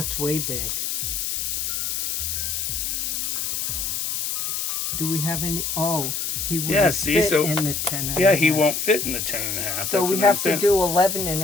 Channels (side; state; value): left; noise; hiss, 2 dB below the sound